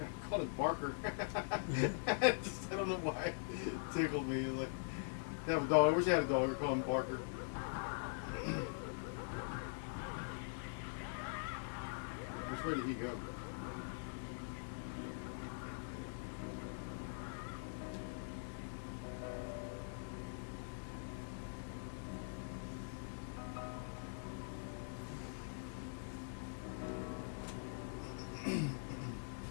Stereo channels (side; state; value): right; silent; digital silence